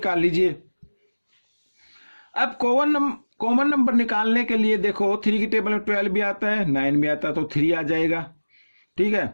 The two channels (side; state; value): both; inverted; correlation -1.00